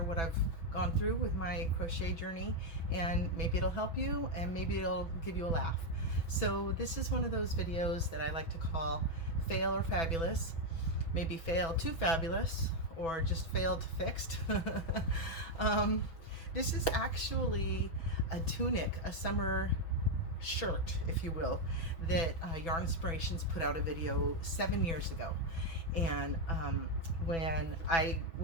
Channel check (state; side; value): late; right; 6.1 ms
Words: I've gone through with my crochet journey, and maybe it'll help you and maybe it'll give you a laugh. So this is one of those videos that I like to call Fail or Fabulous. Maybe fail to fabulous or just fail to fixed. This is actually a tunic, a summer shirt, if you will, that Yarnspirations put out a video 7 years ago. And when I